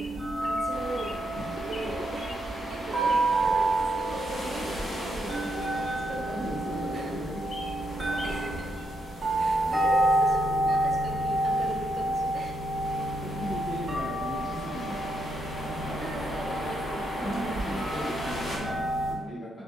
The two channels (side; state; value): both; normal; correlation 0.79